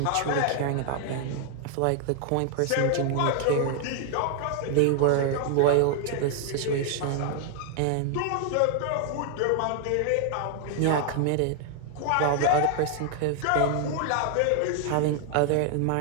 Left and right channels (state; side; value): different; both; correlation 0.00